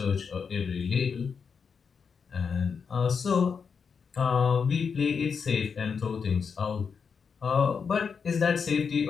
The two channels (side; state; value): right; quieter; 6.0 dB